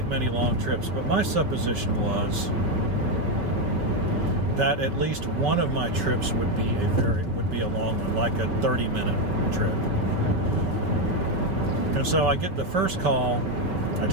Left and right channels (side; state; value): left; late; 5.7 ms